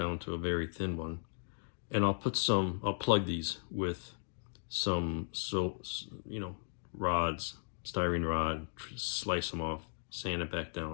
to a very thin one. And I'll plug these with some, rods, styrene rod, slice them off, sand it back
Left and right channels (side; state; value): right; silent; digital silence